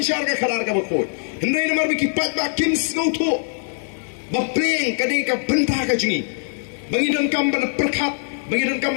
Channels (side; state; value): right; silent; digital silence